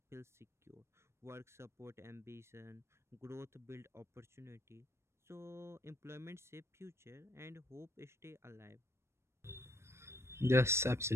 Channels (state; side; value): late; left; 0.13 ms